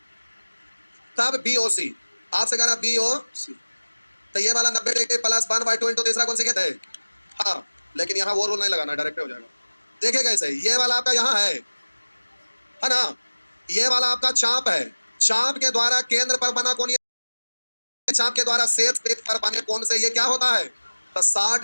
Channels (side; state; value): both; inverted; correlation -1.00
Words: तब बीओसी, आपसे कह रहा बीओसी, तो ये वाला 90 डिग्री प्लस 1/2 इंटू तीसरा कौन सी कहते हैं, हाँ, लेकिन यहाँ वो रूल नहीं लगाना, डायरेक्ट हो जाएगा। देखिए कैसे, ये वाला आपका यहाँ है ना, ये वाला आपका चाप है, चाप के द्वारा केंद्र पर बना कोण, चाप के द्वारा शेष वृत्त पर बने कोण से ये क्या होता है, तो